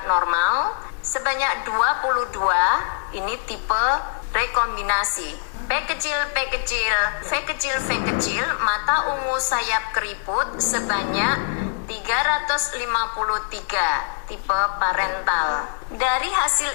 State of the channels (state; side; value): silent; right; digital silence